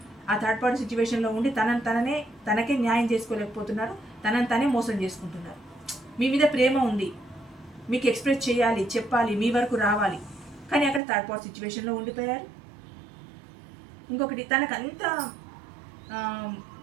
ఆ థర్డ్ పార్టీ సిచ్యువేషన్లో ఉండి తనకే న్యాయం చేసుకోలేకపోతున్నారు, తనని తనే మోసం చేసుకుంటున్నారు. మీ మీద ప్రేమ ఉంది, మీకు ఎక్స్ప్రెస్ చేయాలి, చెప్పాలి, మీ వరకు రావాలి, కానీ అక్కడ థర్డ్ పార్టీ సిచ్యువేషన్లో ఉండిపోయారు. ఇంకొకటి, తనకంత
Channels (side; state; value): left; drops out; at 11.0 s